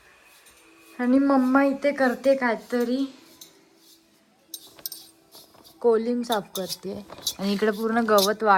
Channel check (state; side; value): identical; both; correlation 1.00